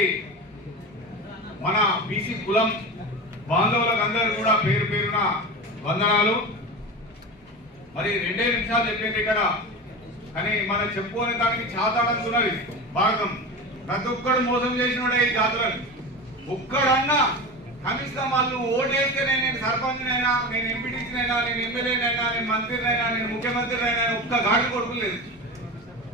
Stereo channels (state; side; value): normal; both; correlation 0.27